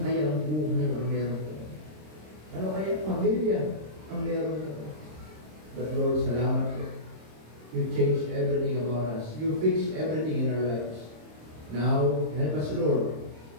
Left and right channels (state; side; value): late; left; 26 ms